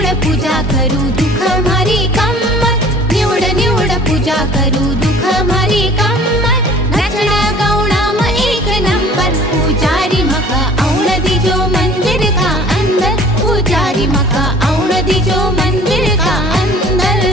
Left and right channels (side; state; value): both; normal; correlation 0.48